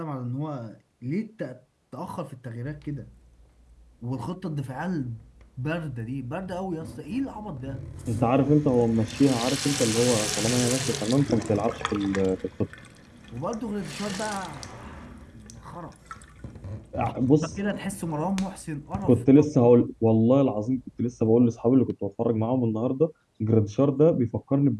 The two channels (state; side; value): identical; both; correlation 1.00